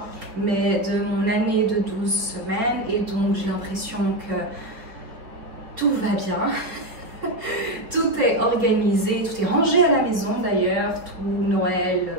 mais de mon année de 12 semaines. Et donc, j'ai l'impression que tout va bien. Tout est organisé, tout est rangé à la maison d'ailleurs. Tout Noël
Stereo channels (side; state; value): left; late; 4.5 ms